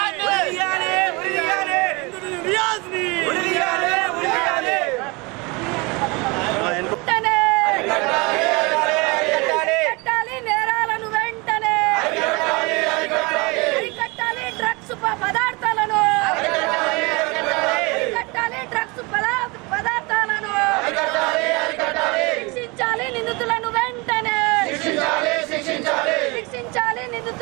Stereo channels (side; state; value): left; quieter; 26.9 dB